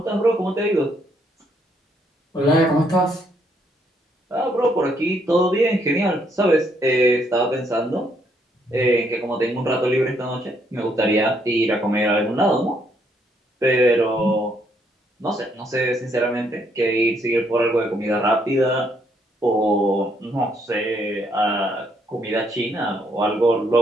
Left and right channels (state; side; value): normal; both; correlation 0.71